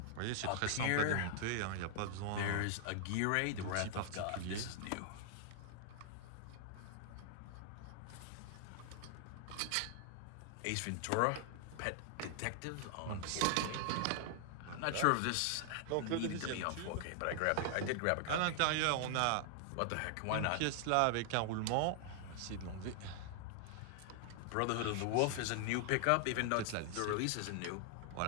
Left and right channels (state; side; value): different; both; correlation 0.00